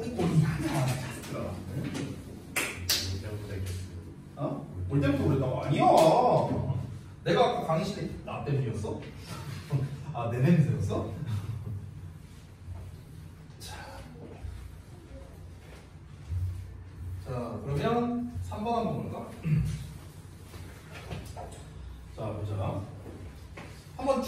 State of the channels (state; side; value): identical; both; correlation 1.00